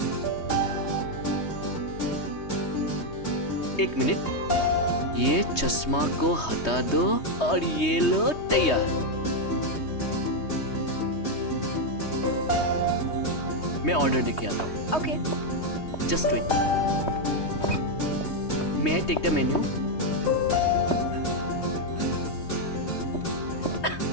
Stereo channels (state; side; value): late; right; 3.2 ms